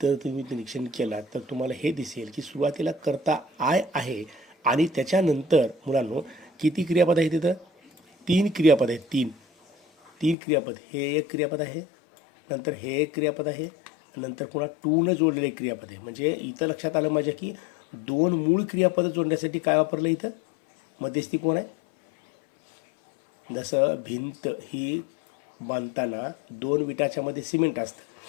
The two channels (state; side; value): drops out; right; at 10.4 s